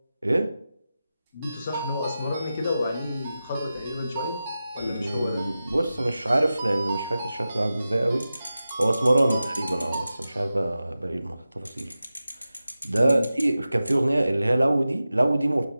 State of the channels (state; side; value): inverted; both; correlation -0.94